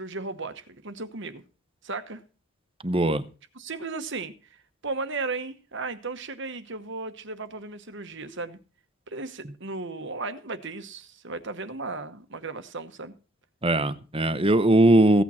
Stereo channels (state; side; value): normal; both; correlation 0.59